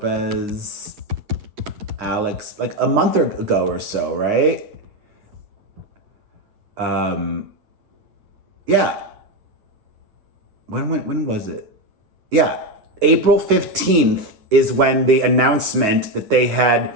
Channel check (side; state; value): left; late; 9.6 ms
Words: Alex, like a month ago or so, right? Yeah. When was it? Yeah, April 15th is when the announcement that they had